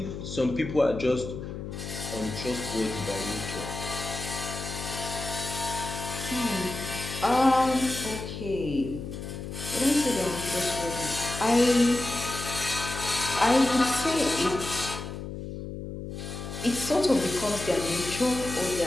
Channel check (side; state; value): left; noise; hum, 8 dB below the sound